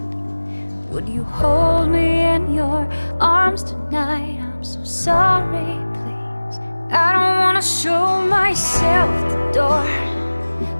Would you hold me in your arms tonight? I'm so sorry, please. I don't wanna show myself the door.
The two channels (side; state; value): both; inverted; correlation -1.00